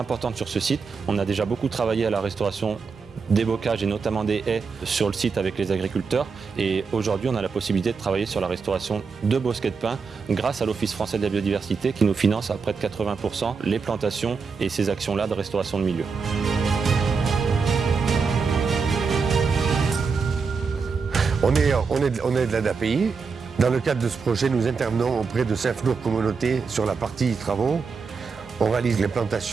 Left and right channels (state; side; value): quieter; left; 5.2 dB